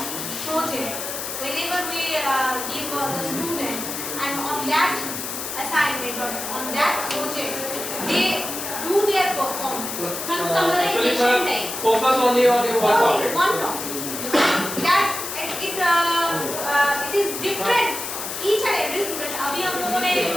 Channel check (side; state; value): left; noise; hiss, 6 dB below the sound